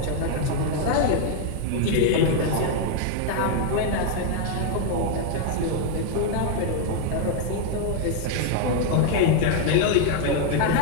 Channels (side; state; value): both; different; correlation 0.00